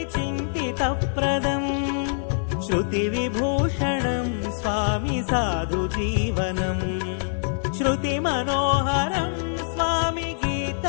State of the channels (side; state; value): right; silent; 62 dB below the other